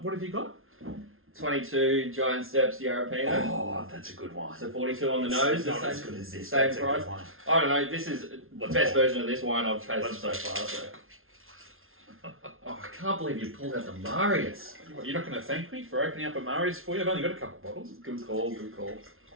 What have you got? 22 Giant Steps Yarra Valley. Oh, that's a good one. So 42 on the nose. It's not as good as this. Same That's a price. good one. I don't know. This is the best version of this wine I've tasted so far. So. Oh, I can't believe you pulled out the Marius. You're not going to thank me for opening up a Marius for you? I've only got a couple bottles. Good call.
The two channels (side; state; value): left; late; 0.61 ms